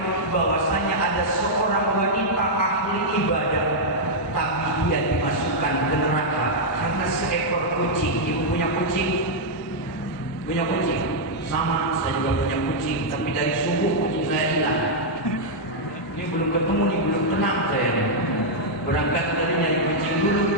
bahwasanya ada seorang wanita ahli ibadah, tapi dia dimasukkan ke neraka karena seekor kucing. Ibu punya kucing? Punya kucing? Sama, saya juga punya kucing, tapi dari subuh kucing saya hilang. Ini belum ketemu nih, belum tenang saya nih. Berangkat dari nyari kucing dulu.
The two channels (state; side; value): normal; both; correlation -0.05